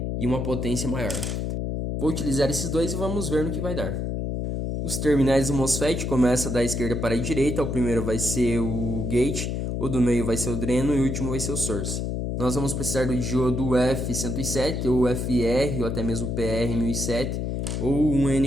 e uma potência maior. Vou utilizar esses dois e vamos ver no que vai dar. Os terminais do MOSFET começam da esquerda para a direita. O primeiro vai ser o gate, o do meio vai ser o dreno e o último vai ser o source. Nós vamos precisar do diodo F107 ou FR ou até mesmo PR1007 ou um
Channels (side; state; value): left; noise; hum, 2 dB below the sound